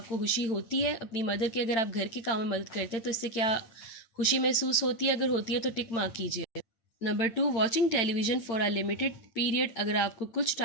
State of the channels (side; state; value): right; late; 8.9 ms